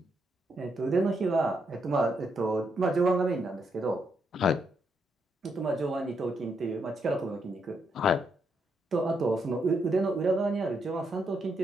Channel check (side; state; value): both; normal; correlation 0.78